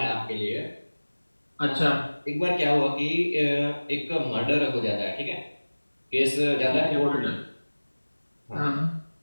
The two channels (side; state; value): both; inverted; correlation -1.00